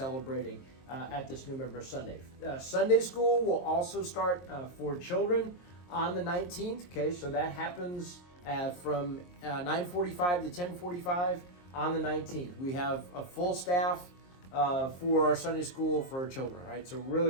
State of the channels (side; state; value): right; late; 23 ms